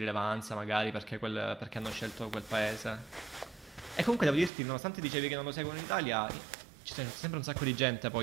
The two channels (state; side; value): drops out; left; at 4.5 s